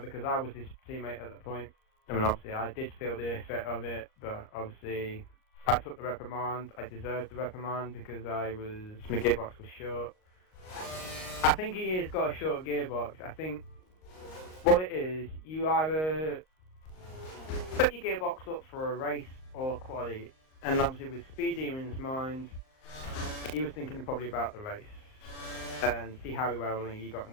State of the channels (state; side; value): late; right; 38 ms